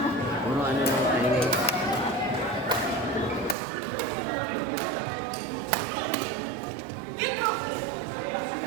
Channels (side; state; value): left; drops out; at 3.6 s